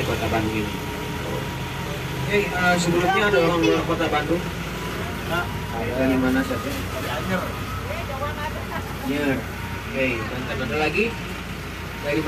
kota Bandung ini. Oke, sebelumnya ada orang luar kota Bandung. Dari mana saja? Anyer. Oke, dan ada lagi dari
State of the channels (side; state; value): both; identical; correlation 1.00